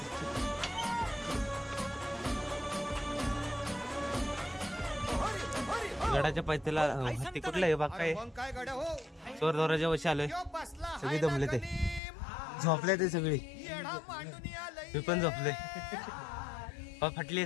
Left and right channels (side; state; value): right; drops out; at 12.0 s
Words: गडाच्या पायथ्याला ते कुठलं आहे बाग काय मग काय गड्या हो चोर दौराच्या वशी आलोय यो बसला सगळी दमले ते झोपले ते सगळी येडा मांडून आलंय मी पण झोपले फाटली आहे